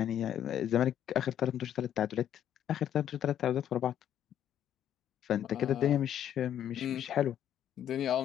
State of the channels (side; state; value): right; quieter; 10.3 dB